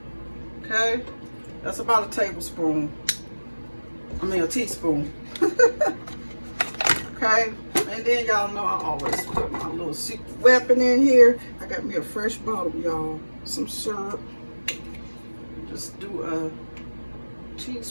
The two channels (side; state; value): both; inverted; correlation -1.00